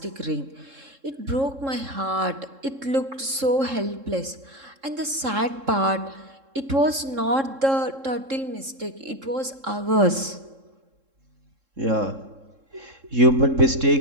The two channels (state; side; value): late; left; 3.7 ms